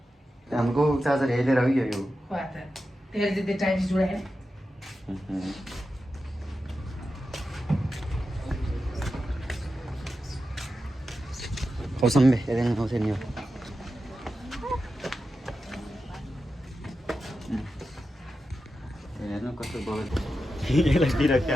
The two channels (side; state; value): both; normal; correlation 0.91